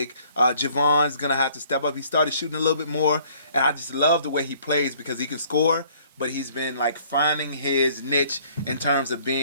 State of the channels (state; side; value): inverted; both; correlation -0.59